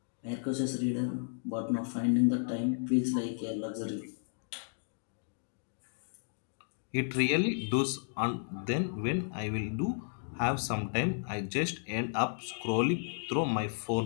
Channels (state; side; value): silent; right; digital silence